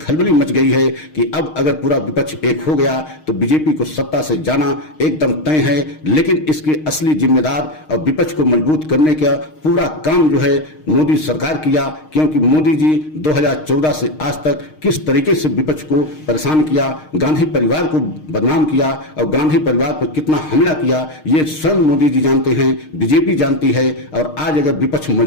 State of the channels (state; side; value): late; right; 6.5 ms